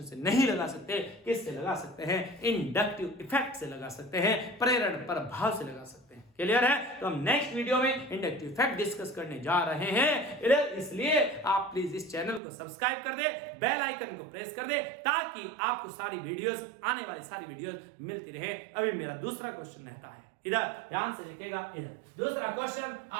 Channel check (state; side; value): drops out; left; at 12.4 s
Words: से नहीं लगा सकते। किससे लगा सकते हैं? इंडक्टिव इफेक्ट से लगा सकते हैं, प्रेरण प्रभाव से लगा सकते हैं। क्लियर है? तो हम नेक्स्ट वीडियो में इंडक्टिव इफेक्ट डिस्कस करने जा रहे हैं। इसलिए आप प्लीज इस चैनल को सब्सक्राइब कर दे, बेल आइकन को प्रेस कर दे, ताकि आपको सारी वीडियोस, आने वाली सारी वीडियोस मिलती रहे। अभी मेरा दूसरा क्वेश्चन रहता है, इधर ध्यान से देखिएगा। इधर दूसरा क्वेश्चन